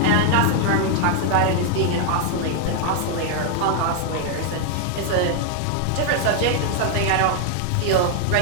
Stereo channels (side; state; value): both; different; correlation 0.00